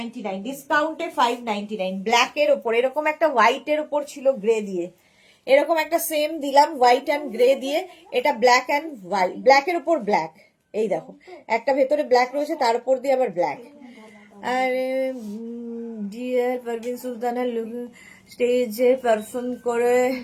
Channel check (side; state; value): both; identical; correlation 1.00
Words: ডিসকাউন্টে 599, ব্ল্যাকের ওপর এরকম একটা হোয়াইটের ওপর ছিল গ্রে দিয়ে, এরকম একটা সেম দিলাম হোয়াইট অ্যান্ড গ্রে দিয়ে, এটা ব্ল্যাক অ্যান্ড হোয়াইট, ব্ল্যাকের ওপর ব্ল্যাক, এই দেখো একটা ভেতরে ব্ল্যাক রয়েছে তার উপর দিয়ে আবার ব্ল্যাক। আর ডিয়ার পারভিন সুলতানা স্টেজে পারফর্ম করে